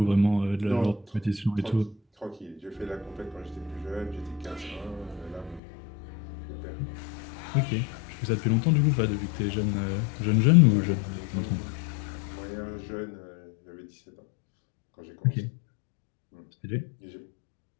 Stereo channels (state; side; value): drops out; right; at 5.6 s